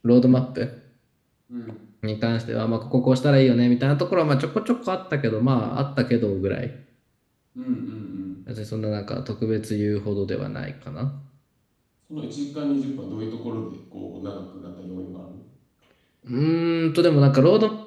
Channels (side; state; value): both; identical; correlation 1.00